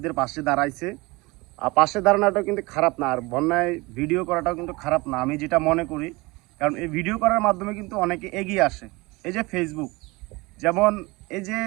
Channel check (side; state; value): left; quieter; 23.7 dB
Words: পাশে দাঁড়াইছে। আর পাশে দাঁড়ানোটাও কিন্তু খারাপ না, আর বন্যায় ভিডিও করাটাও কিন্তু খারাপ না, আমি যেটা মনে করি। কারণ এই ভিডিও করার মাধ্যমে কিন্তু অনেকে এগিয়ে আসে। এই যে ফেসবুক, যেমন এই যে